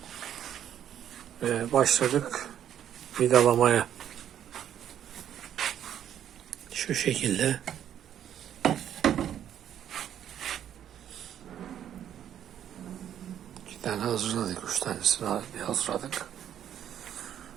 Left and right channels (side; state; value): left; quieter; 10.2 dB